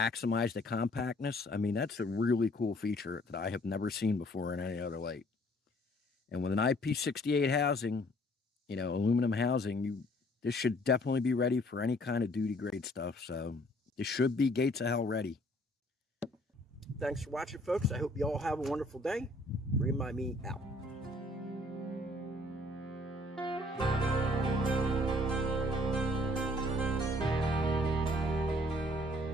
the compactness, I mean, that's a really cool feature that I have never seen before in any other light. And with an IP68 housing, you know, aluminum housing, this should definitely be ready for any kind of duty grade stuff. So this should be gates of hell ready. Thanks for watching, folks. I hope you all have a wonderful day. Remind me out.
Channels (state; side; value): normal; both; correlation 0.60